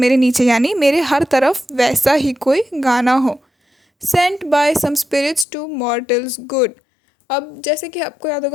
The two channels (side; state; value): right; drops out; at 5.5 s